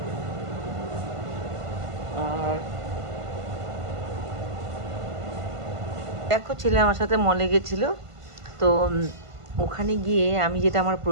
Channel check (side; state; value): left; late; 1.5 ms